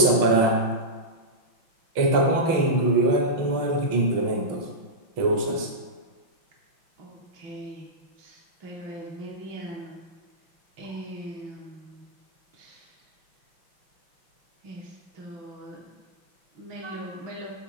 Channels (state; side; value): late; left; 6.4 ms